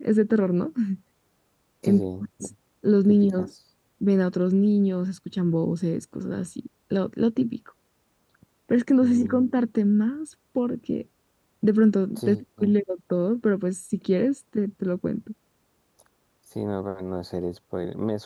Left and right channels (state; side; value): identical; both; correlation 1.00